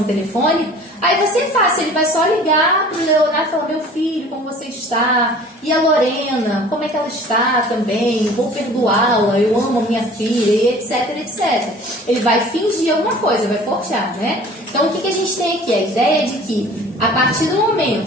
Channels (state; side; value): normal; both; correlation 0.47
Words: telefônica, aí vai ser fácil, ele vai só ligar para o Leonardo e falar: meu filho, como você está? E a Lorena, como é que ela está também? Vou perdoá-la, eu amo a minha filha, e etc, etc. Ele vai fingir alguma coisa, vai forjar, né? Então, o que a gente tem aqui? A ideia de que, a partir do